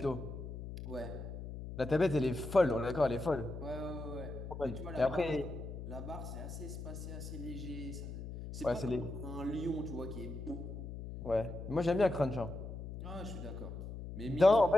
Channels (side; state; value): left; noise; hum, 8 dB below the sound